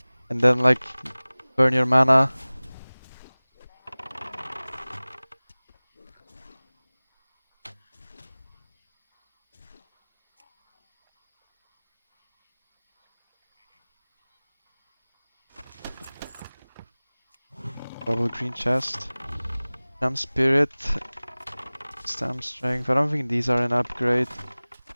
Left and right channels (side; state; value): both; inverted; correlation -1.00